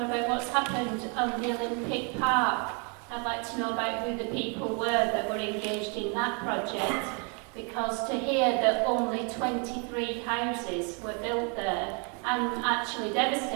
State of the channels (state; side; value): quieter; left; 36.0 dB